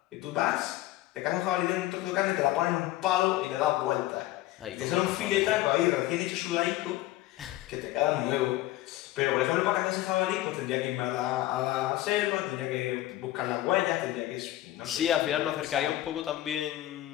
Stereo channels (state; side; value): quieter; right; 15.4 dB